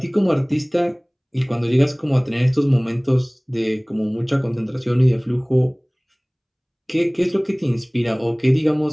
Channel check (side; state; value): both; identical; correlation 1.00